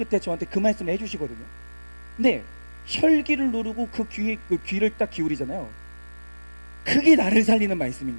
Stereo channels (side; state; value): both; inverted; correlation -1.00